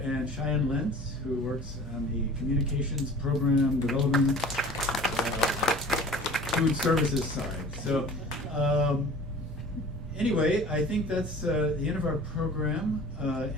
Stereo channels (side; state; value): both; normal; correlation 0.43